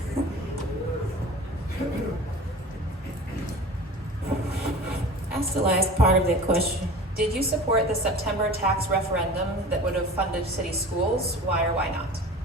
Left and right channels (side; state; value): both; normal; correlation 0.39